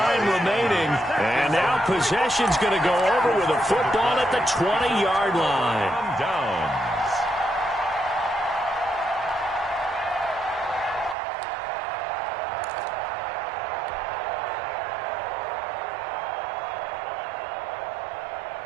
remaining. And now possession's going to go over with a football at the 20-yard line. Down.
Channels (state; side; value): drops out; left; at 11.2 s